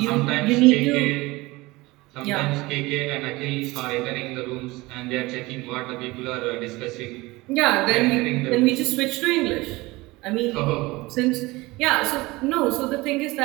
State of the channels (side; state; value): left; quieter; 21.5 dB